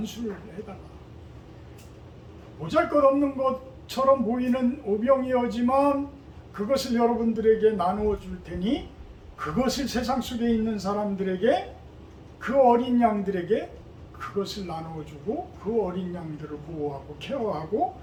해달라. 보잘것없는 것처럼 보이는 오병이어지만 그것을 여러분들에게 나누어 줄 테니 그것을 세상 속에 있는 사람들에게, 그 어린 양들에게 그것을 나누어 주고 그 어린 양들을 보호하고 케어하고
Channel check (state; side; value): identical; both; correlation 1.00